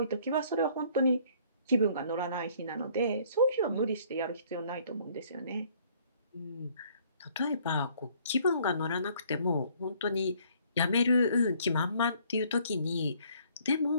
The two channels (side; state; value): both; inverted; correlation -0.60